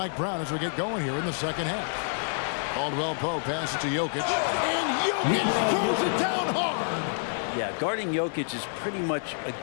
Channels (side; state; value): right; silent; digital silence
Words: Brown as we get going here in the second half. Caldwell Pope passes to Jokic. And Jokic throws it down hard. Yeah, guarding Jokic is pretty much a